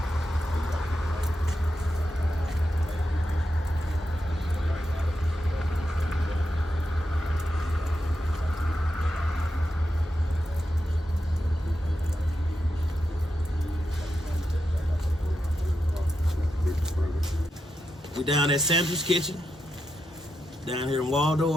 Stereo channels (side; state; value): both; normal; correlation 0.87